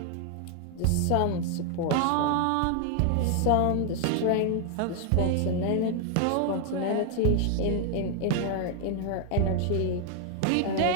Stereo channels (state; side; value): different; both; correlation 0.00